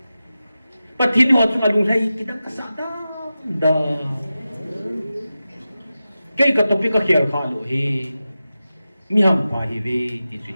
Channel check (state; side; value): inverted; both; correlation -0.93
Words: Pati ni waktu alung lagi kita kasada dah. Kaya kat topik kaya kalau he, miham pahi we di